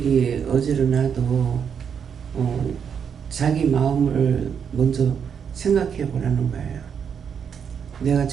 어지러나도 자기 마음을 먼저 생각해 보라는 거예요. 내가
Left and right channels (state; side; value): quieter; left; 7.3 dB